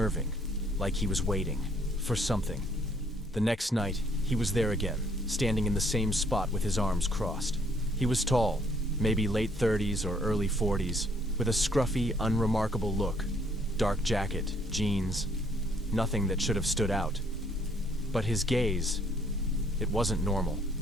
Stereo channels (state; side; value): normal; both; correlation 0.65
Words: like he was waiting for something. The next night, he was there again, standing in the same spot with his arms crossed. He was tall, maybe late 30s or early 40s, with a scruffy, unremarkable look. Dark jacket, jeans, nothing that should have stood out. But his gaze, it wasn't normal.